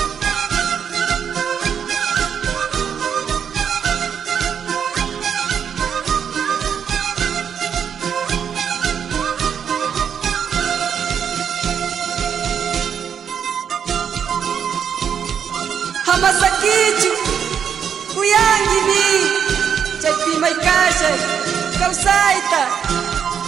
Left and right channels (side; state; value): left; quieter; 7.8 dB